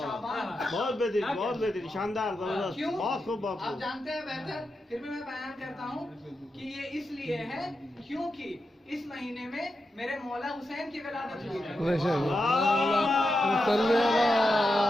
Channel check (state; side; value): normal; both; correlation 0.88